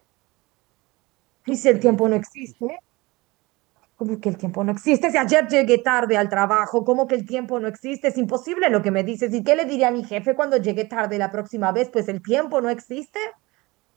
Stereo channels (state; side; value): quieter; left; 22.7 dB